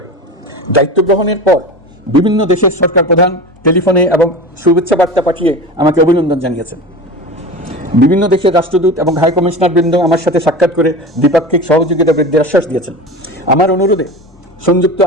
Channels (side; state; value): both; normal; correlation 0.30